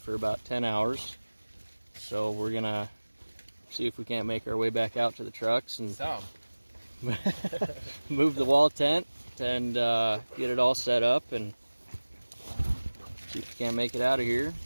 about 10 hours. So we're gonna see if we can't make our way back out to the trucks and move the wall tent and get it all set up and see if we can't make it out of here.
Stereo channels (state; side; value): inverted; both; correlation -1.00